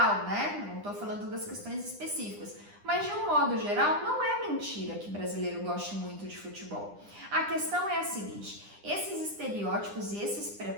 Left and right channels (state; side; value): late; left; 9.9 ms